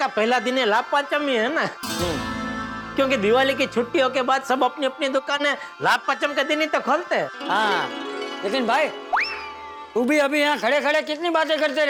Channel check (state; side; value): identical; both; correlation 1.00